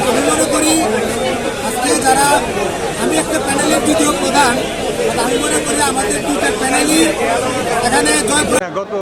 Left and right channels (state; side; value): identical; both; correlation 1.00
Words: আমি মনে করি আজকে যারা, আমি একটা প্যানেলের দ্বিতীয় প্রধান, আমি মনে করি আমাদের দুটো প্যানেলই এখানে গত